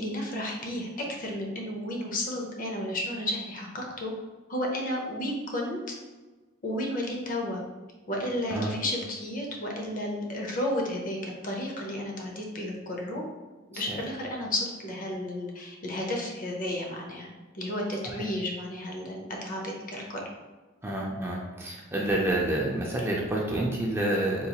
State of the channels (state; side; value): normal; both; correlation 0.41